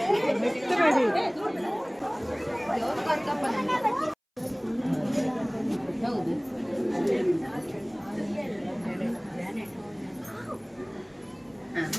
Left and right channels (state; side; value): identical; both; correlation 1.00